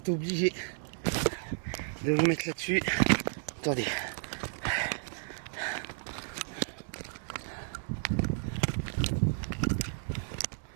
obligé de vous mettre là-dessus. Attendez.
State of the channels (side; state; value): left; silent; digital silence